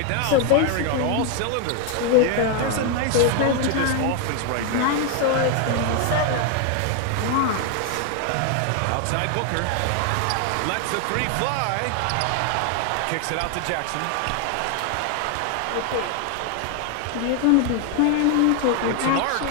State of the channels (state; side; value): different; both; correlation 0.01